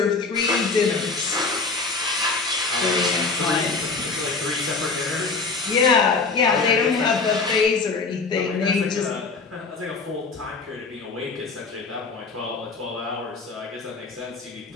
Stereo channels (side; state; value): right; quieter; 4.2 dB